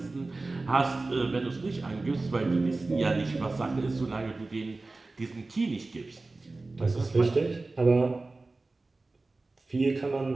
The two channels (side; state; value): left; quieter; 3.3 dB